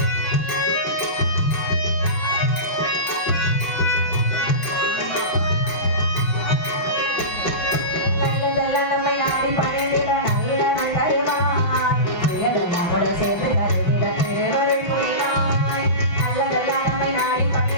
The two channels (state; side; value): late; right; 5.9 ms